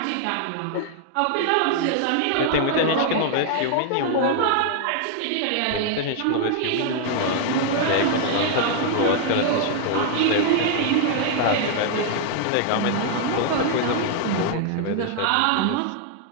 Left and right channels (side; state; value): both; different; correlation 0.00